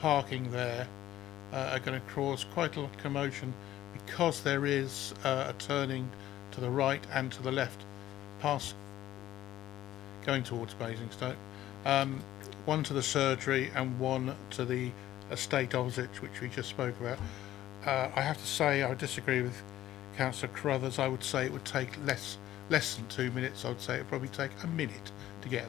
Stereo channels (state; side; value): quieter; right; 13.6 dB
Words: parking there are going to cause quite a lot of commotion, because there is a turning to the right and to the left past going towards Basingstoke, one to the surgery and one to the estate opposite, which we just spoke about. I have to say I disagree with Councillor Carruthers. I would say it would take less than 2 minutes. I would say it would probably take a minute to get